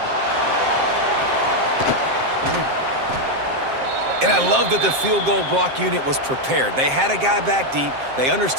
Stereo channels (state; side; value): late; left; 7.6 ms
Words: And I love that the field goal block unit was prepared. They had a guy back deep. They